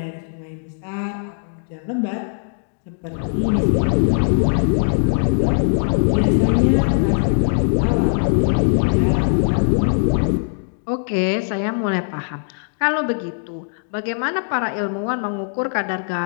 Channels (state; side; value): silent; right; digital silence